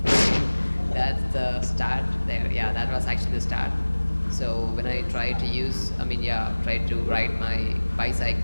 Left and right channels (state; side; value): inverted; both; correlation -1.00